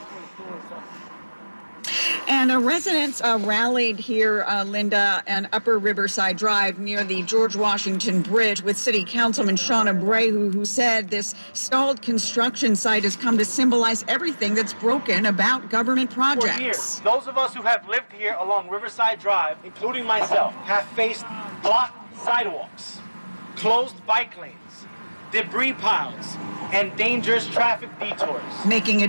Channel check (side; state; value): both; inverted; correlation -1.00